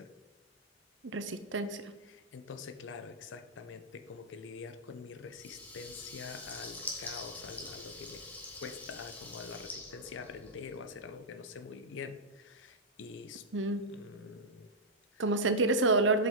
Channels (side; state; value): both; normal; correlation -0.09